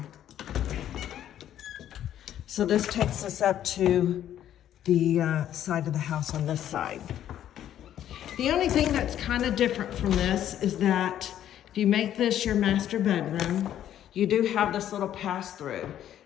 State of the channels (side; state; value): right; quieter; 11.1 dB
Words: So this takes us up to the side of the house on this side. The only thing that's kind of different from this is that if you make this your master bedroom, you do have this little pass-through.